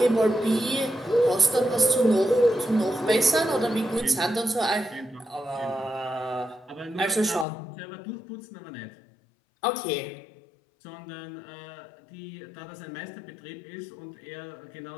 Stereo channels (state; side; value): drops out; right; at 7.5 s